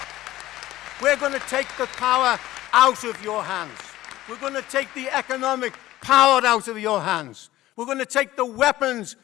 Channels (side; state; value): right; quieter; 15.6 dB